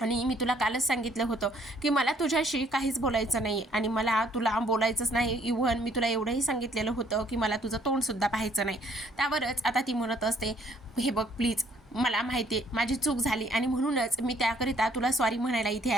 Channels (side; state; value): both; normal; correlation 0.64